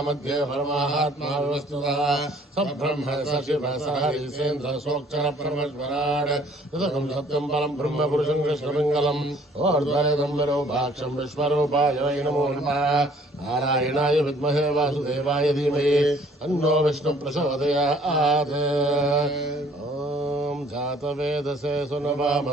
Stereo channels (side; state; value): both; normal; correlation 0.58